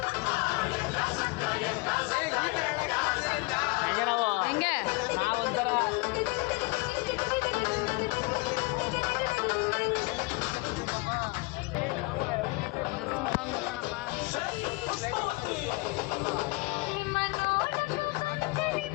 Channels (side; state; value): right; quieter; 25.8 dB